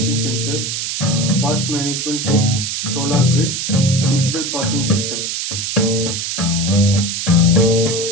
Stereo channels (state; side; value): noise; right; hiss, 3 dB below the sound